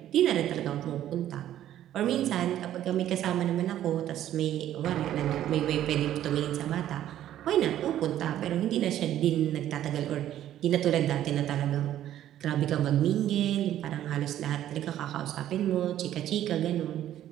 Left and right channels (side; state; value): left; quieter; 12.0 dB